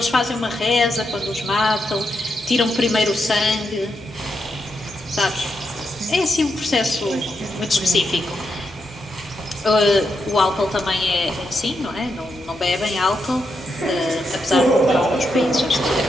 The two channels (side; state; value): both; normal; correlation 0.83